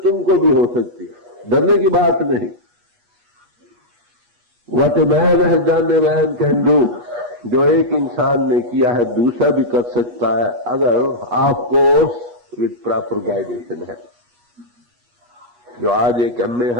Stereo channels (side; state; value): left; late; 8.3 ms